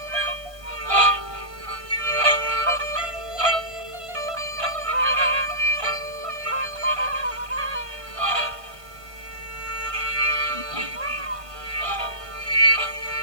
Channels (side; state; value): left; late; 1.5 ms